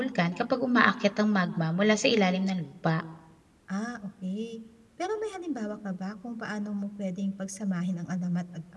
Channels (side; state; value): both; identical; correlation 1.00